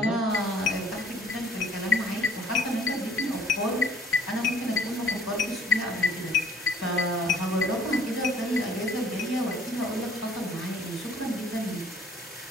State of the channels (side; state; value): both; normal; correlation 0.57